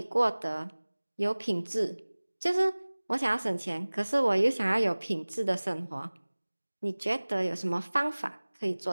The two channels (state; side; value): inverted; both; correlation -1.00